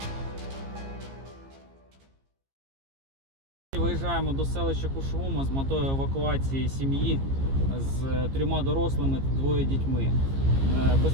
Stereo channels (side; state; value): left; late; 15 ms